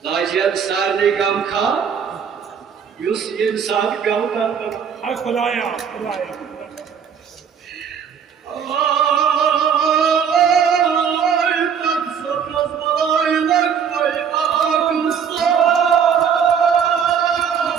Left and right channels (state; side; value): quieter; left; 7.3 dB